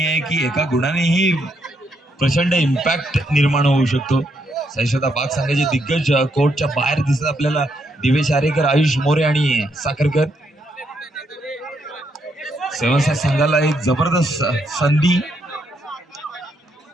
आहे की एका गुणानेही प्रचंड इम्पॅक्ट निर्माण होऊ शकतो. साईश्रद्धा बाग संघाचे दिग्गज कोर्टच्या बाहेर दिसत आपल्याला दिवेश आरेकर, आयुष मोरे आणि साखरकर. सेवन संघाला एक जबरदस्त संधी.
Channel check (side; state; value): both; normal; correlation 0.77